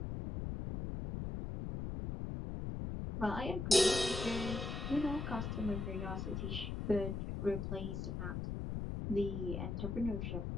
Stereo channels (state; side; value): noise; left; rumble, 3 dB below the sound